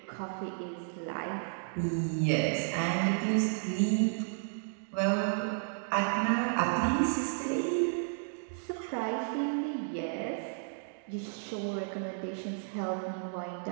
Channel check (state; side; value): silent; left; digital silence